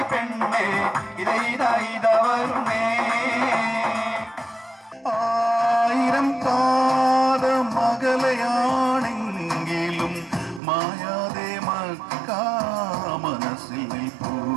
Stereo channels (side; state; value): left; drops out; at 10.6 s